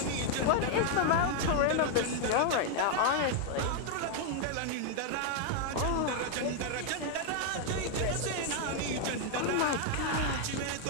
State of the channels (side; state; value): both; different; correlation 0.00